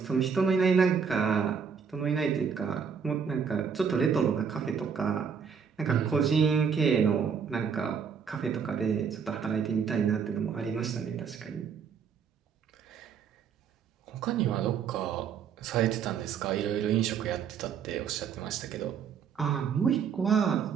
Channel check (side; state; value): left; quieter; 6.7 dB